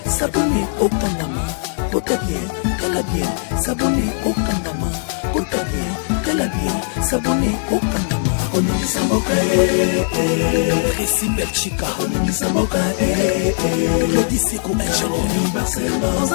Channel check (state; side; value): silent; right; digital silence